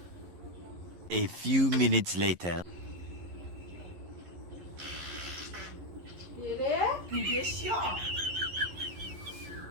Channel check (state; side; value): late; left; 11 ms